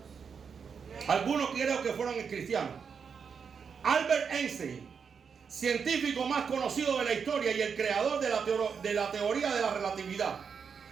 Algunos creo que fueron cristianos. Albert Einstein, científico más conocido de la historia y el creador de la teoría de la relatividad,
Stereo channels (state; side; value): quieter; left; 6.3 dB